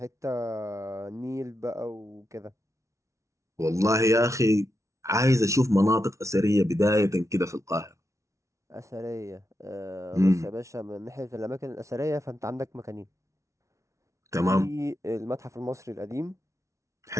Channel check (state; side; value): late; left; 0.14 ms